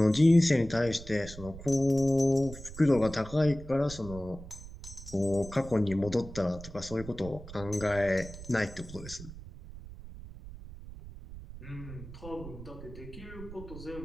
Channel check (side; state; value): right; noise; rumble, 14 dB below the sound